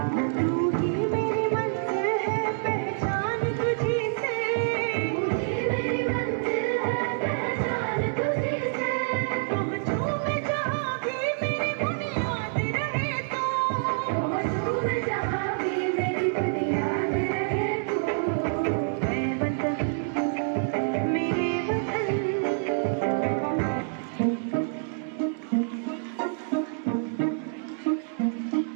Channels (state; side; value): silent; left; 59 dB below the other